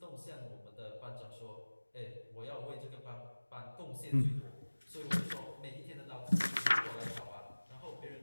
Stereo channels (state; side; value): inverted; both; correlation -1.00